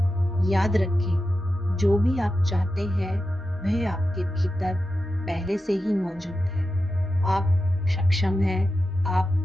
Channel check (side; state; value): both; normal; correlation 0.91